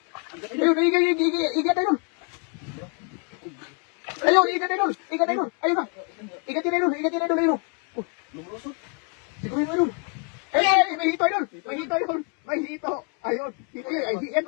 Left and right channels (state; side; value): quieter; right; 36.1 dB